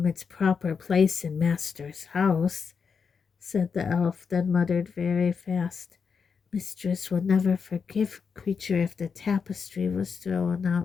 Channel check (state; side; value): quieter; right; 5.9 dB